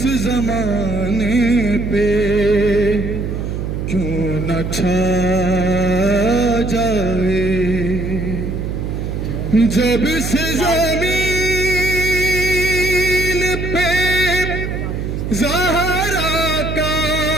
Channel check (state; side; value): noise; right; hum, 4 dB below the sound